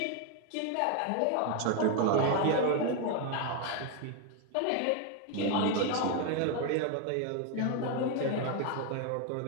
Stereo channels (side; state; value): both; different; correlation 0.01